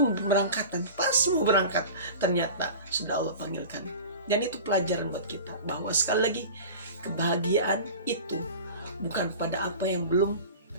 pemberangkatan. Pas mau berangkat, ternyata sudah Allah panggilkan. Dan itu pelajaran buat kita, bahwa sekali lagi, kebahagiaan itu bukan pada apa yang belum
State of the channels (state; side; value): inverted; both; correlation -0.35